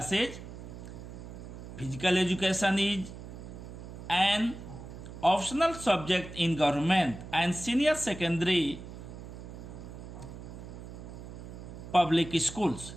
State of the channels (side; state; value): right; noise; hum, 12 dB below the sound